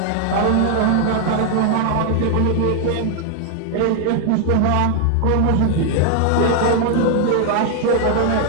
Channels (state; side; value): different; both; correlation 0.00